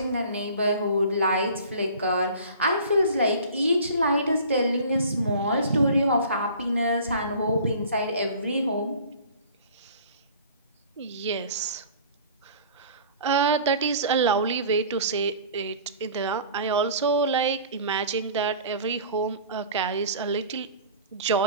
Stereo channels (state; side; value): inverted; both; correlation -0.44